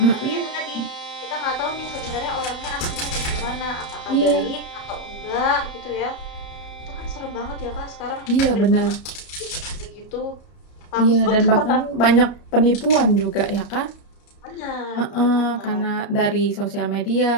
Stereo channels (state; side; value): late; right; 33 ms